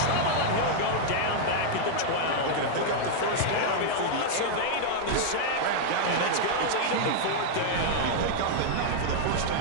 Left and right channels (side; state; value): both; different; correlation -0.01